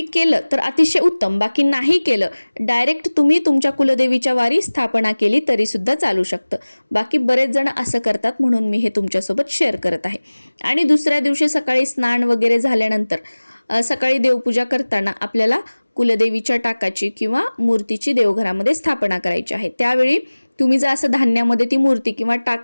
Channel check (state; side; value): inverted; both; correlation -1.00